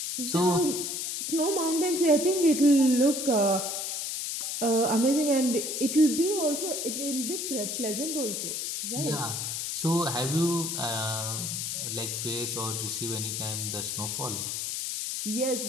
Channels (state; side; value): noise; left; hiss, 3 dB below the sound